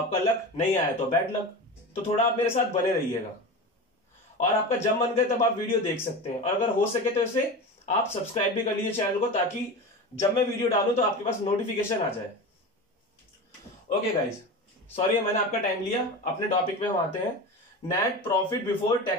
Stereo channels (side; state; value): both; normal; correlation 0.27